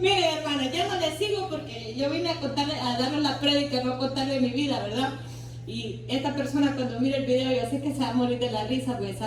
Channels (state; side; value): identical; both; correlation 1.00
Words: hermana, ya no le sigo porque yo vine a darle la prédica, no a contarle mi vida, ¿verdad? Y esta persona cuando mire el video, yo sé que se va a morir de la risa porque